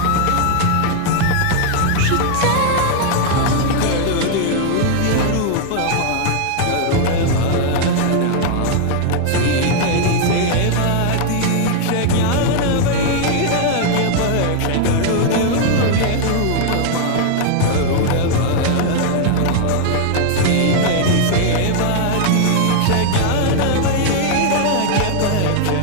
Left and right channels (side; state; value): both; different; correlation 0.00